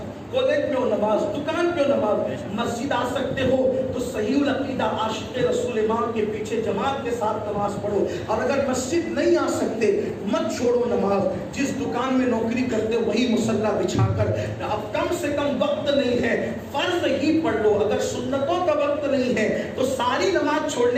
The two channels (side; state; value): both; identical; correlation 1.00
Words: کالج میں ہو نماز، دکان پہ ہو نماز، مسجد آ سکتے ہو تو صحیح العقیدہ عاشق رسول امام کے پیچھے جماعت کے ساتھ نماز پڑھو۔ اور اگر مسجد نہیں آ سکتے مت چھوڑو نماز۔ جس دکان میں نوکری کرتے ہو وہی مصلی بچھا کر، اب کم سے کم وقت نہیں ہے فرض ہی پڑھ لو۔ اگر سنتوں کا وقت نہیں ہے تو ساری نماز